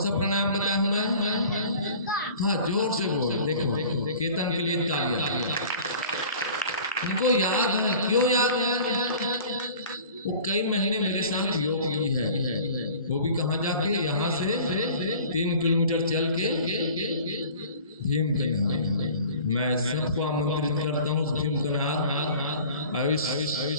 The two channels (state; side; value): inverted; both; correlation -0.45